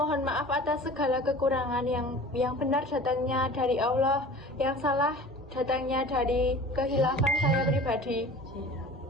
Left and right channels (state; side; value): normal; both; correlation 0.41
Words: maaf atas segala kekurangan. Yang benar datangnya dari Allah, yang salah datangnya dari kehilafan saya pribadi.